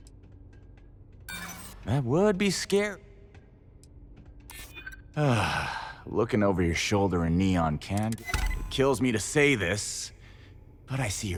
That would be scary. Looking over your shoulder in neon can... It kills me to say this, but I see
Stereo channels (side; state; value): both; identical; correlation 1.00